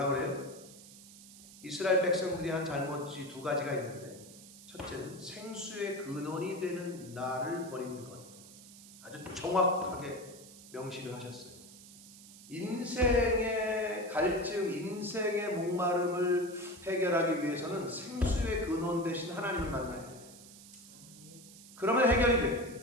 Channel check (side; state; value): right; noise; hiss, 18 dB below the sound